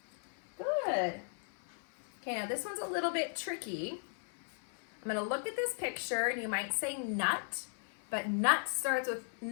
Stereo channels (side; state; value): right; silent; 53 dB below the other